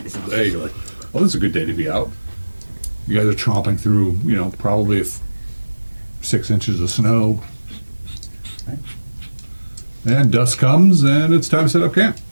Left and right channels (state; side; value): inverted; both; correlation -1.00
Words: day. You're like, well, this is a good day to be out. You guys are tromping through, probably 6 inches of snow. And dusk comes, and it's time to set up camp.